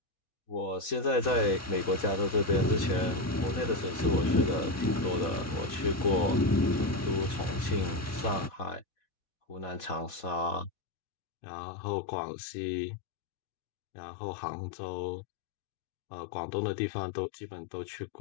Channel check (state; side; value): drops out; right; at 10.7 s